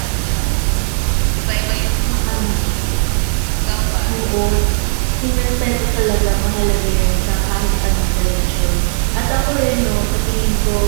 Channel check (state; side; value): silent; left; digital silence